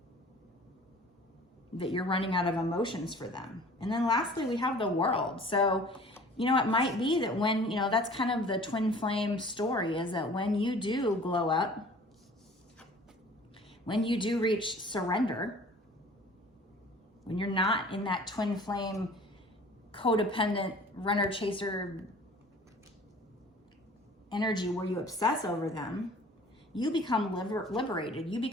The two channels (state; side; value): normal; both; correlation 0.48